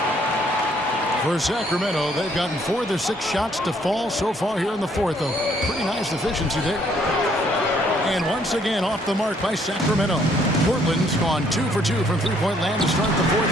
For Sacramento, they've gotten 4 of their 6 shots to fall so far here in the fourth. A pretty nice efficiency there. And once again, off the mark by Sacramento. Portland's gone 2 for 2 from three-point land to start the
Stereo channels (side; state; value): both; normal; correlation 0.66